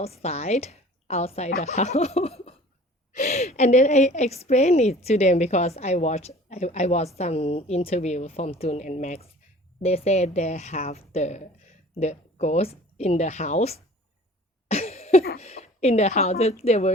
the house. And then I explained it to them, because I watched some interview from Tul and Max. They said they have the ghost in the house in the house that they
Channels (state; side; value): normal; both; correlation 0.47